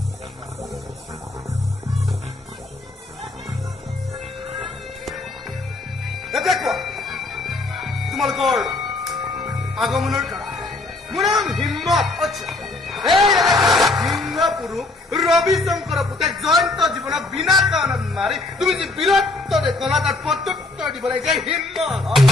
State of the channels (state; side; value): quieter; right; 3.1 dB